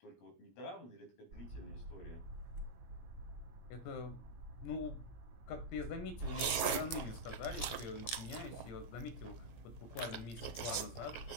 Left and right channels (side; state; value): right; late; 17 ms